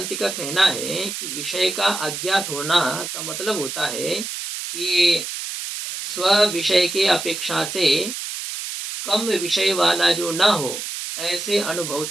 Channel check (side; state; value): right; noise; hiss, 6 dB below the sound